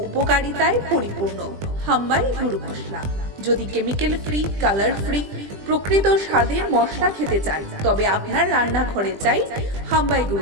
উপকারিতায় পরিপূর্ণ হামবাই গুরু মশলা যদি কেমিক্যাল ফ্রি কালার ফ্রি প্রকৃত স্বাদের মশলা খেতে চান তবে আপনার রান্নাঘরে চাই হামবাই গুরু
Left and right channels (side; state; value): left; late; 20 ms